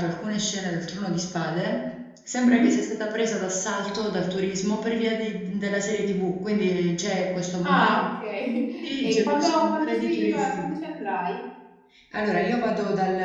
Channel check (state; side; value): identical; both; correlation 1.00